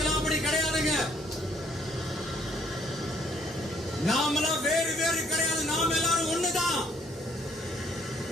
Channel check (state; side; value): normal; both; correlation 0.63